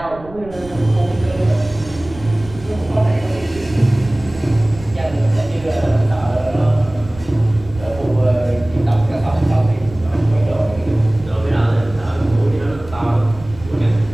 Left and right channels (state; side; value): noise; right; rumble, 17 dB below the sound